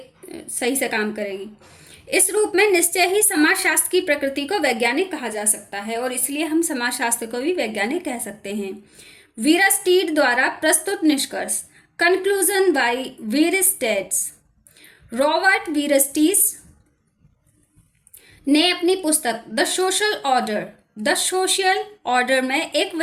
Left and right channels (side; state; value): both; identical; correlation 1.00